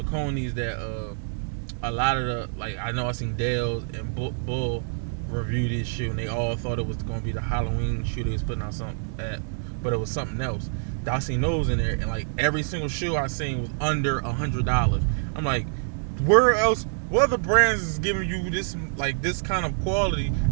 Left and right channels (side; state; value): left; silent; digital silence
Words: that a lot of the like I know I seen Dale's and Bull review this shoe, and they all thought it was going to be the Halloween shoe they was putting out but it was something else. I seen those in there, and like every single shoe I seen was under $100. I'm like, where else? What other brands is giving you this kind of quality,